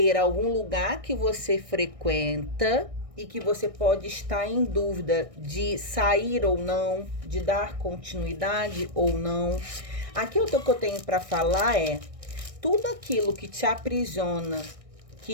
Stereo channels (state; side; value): late; left; 1.6 ms